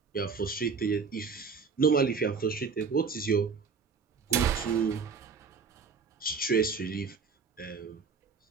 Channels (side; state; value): left; quieter; 5.4 dB